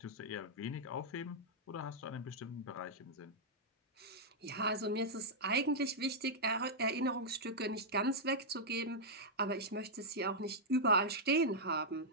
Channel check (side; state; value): both; normal; correlation -0.07